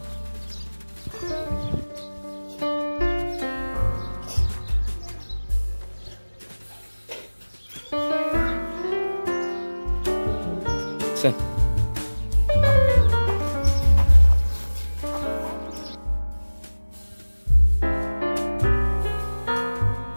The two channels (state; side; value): inverted; both; correlation -1.00